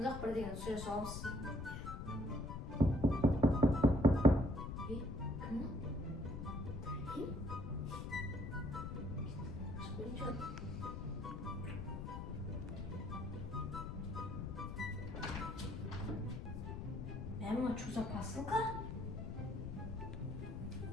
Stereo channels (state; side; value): noise; left; rumble, 6 dB below the sound